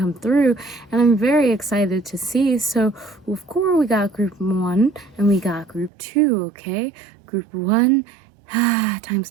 through, and I'm very excited to see. So of course we got group 1 and we got group 2, okay? Group 1,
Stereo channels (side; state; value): left; drops out; at 5.9 s